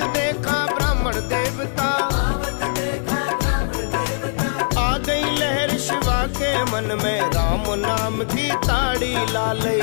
देखा ब्राह्मण देवता, आवत देखा ब्राह्मण देवता, आ गई लहर शिवा के मन में, राम नाम की ताड़ी ला लई,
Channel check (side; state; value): right; silent; 60 dB below the other